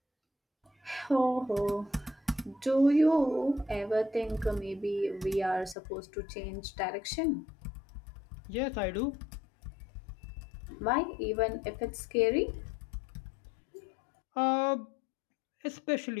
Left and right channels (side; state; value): right; drops out; at 5.8 s